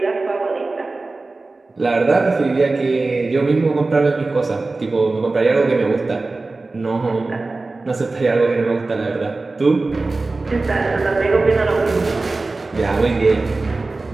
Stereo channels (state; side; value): quieter; left; 3.4 dB